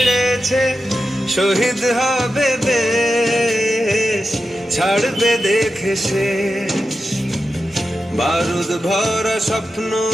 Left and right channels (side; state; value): both; normal; correlation 0.90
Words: শহীদ হবে দেশ, ছাড়বে দেখে শেষ। বারুদ ভরা স্বপ্ন